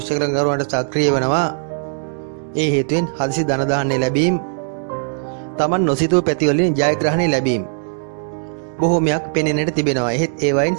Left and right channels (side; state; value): left; silent; 67 dB below the other